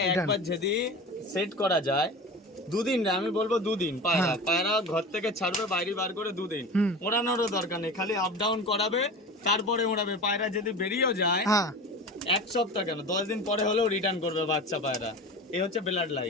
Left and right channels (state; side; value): normal; both; correlation 0.32